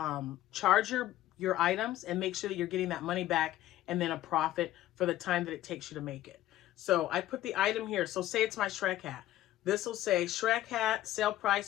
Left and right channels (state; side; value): quieter; right; 14.3 dB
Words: charge your items and make sure that you're getting that money back and then a profit for the time that it takes you to make it. So I put the item here. So say it's my Shrek hat. This will say Shrek hat, sale